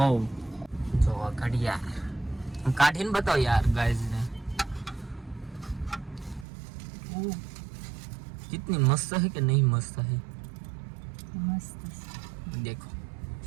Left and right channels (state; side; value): drops out; left; at 6.5 s